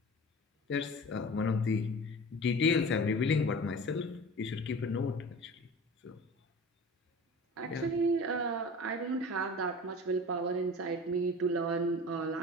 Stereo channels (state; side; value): normal; both; correlation 0.37